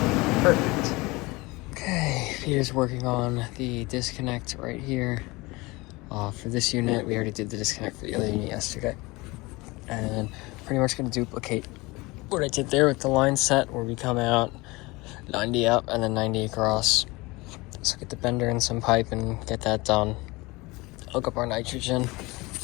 Perfect. Okay, Peter's working on the disconnect right here. For this unit, we already did the disconnect for the other unit yesterday. And pretty much going to duplicate what I did there with the line set, where we come out 90 up and then 90 across. So get the bender and some pipe and get that done. Hook up our nitrogen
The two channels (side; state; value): right; quieter; 23.2 dB